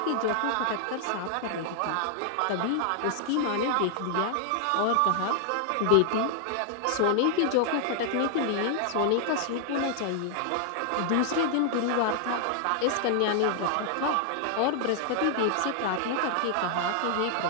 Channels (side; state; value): both; different; correlation 0.00